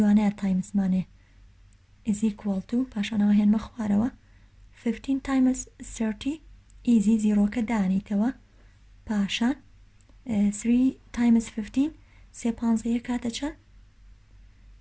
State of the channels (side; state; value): both; identical; correlation 1.00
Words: تایمزمانێ is equal to پاشانەوە هێنمە خوارەوە 15 times 30 easy زیرۆکە دانیتەوە پاشان 3 times 15 سێ پانزەیە کاتە چەند